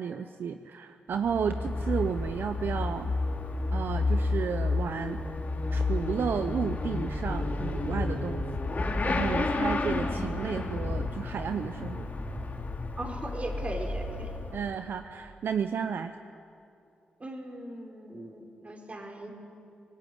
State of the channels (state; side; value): normal; both; correlation 0.80